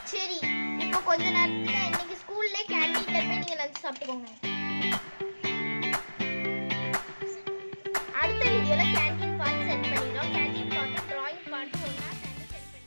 சரி இப்போ கொஞ்ச நேரத்துல இன்னைக்கு ஸ்கூல்ல கேண்டீன்ல போய் நீங்க லஞ்ச் சாப்பிட்டுக்கோங்க.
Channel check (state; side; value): inverted; both; correlation -1.00